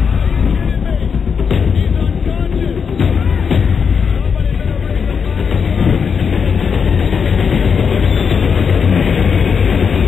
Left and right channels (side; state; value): right; quieter; 6.3 dB